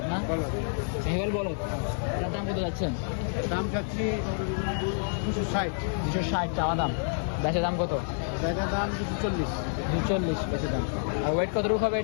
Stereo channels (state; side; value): silent; right; 59 dB below the other